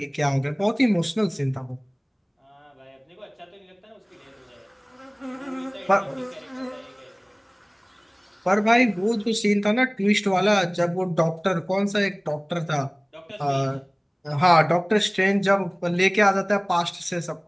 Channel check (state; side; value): identical; both; correlation 1.00